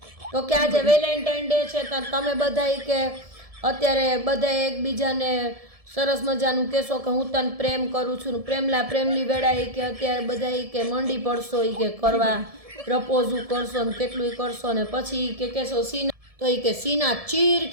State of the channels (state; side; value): late; left; 1.7 ms